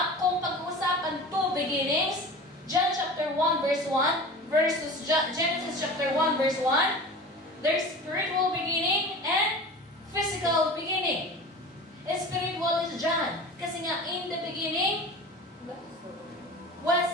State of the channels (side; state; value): both; normal; correlation 0.36